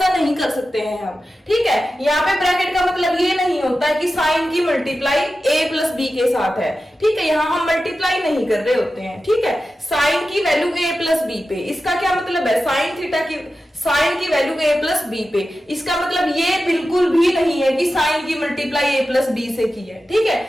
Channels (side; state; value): both; normal; correlation 0.93